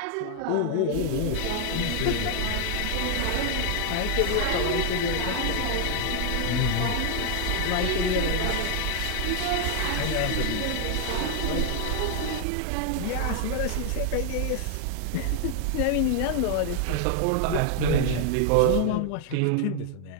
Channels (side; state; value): both; different; correlation 0.00